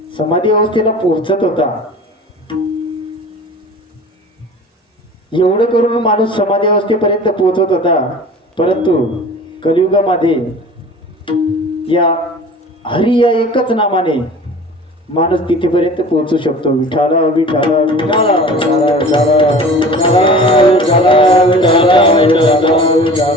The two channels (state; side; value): normal; both; correlation 0.41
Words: समाधी अवस्थेला पोहोचत होता, एवढं करून माणूस समाधी अवस्थेपर्यंत पोहोचत होता. परंतु कलियुगामध्ये या हरी या एकच नामाने माणूस तिथेपर्यंत पोहोचू शकतो. विठाला विठाला विठाला विठाला विठाला विठाला विठाला विठाला